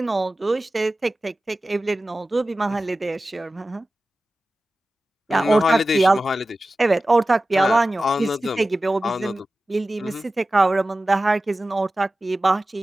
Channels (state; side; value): normal; both; correlation 0.95